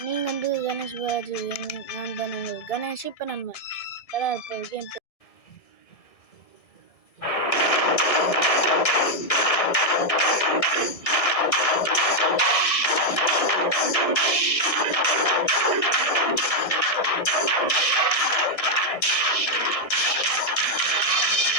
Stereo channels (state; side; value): late; right; 1.7 ms